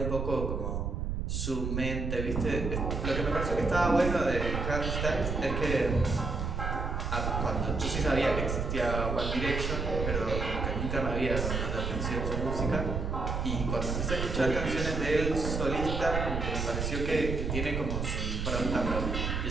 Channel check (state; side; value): noise; right; rumble, 2 dB below the sound